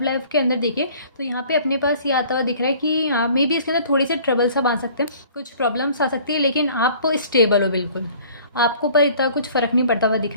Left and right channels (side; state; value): both; inverted; correlation -0.51